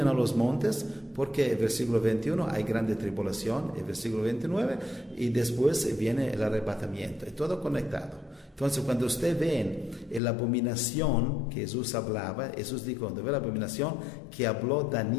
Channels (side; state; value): right; drops out; at 10.2 s